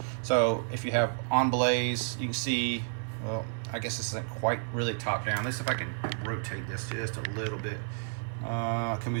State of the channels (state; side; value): silent; left; 55 dB below the other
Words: So if you have on blaze, you can see, well, I guess this isn't quite really top down. Let's see if I can rotate this just a little bit. Can we